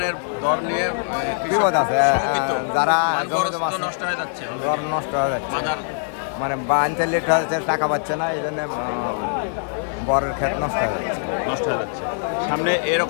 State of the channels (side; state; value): right; silent; digital silence